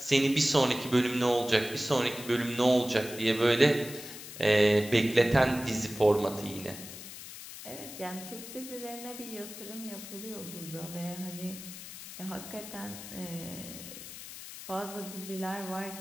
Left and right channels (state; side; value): noise; left; hiss, 12 dB below the sound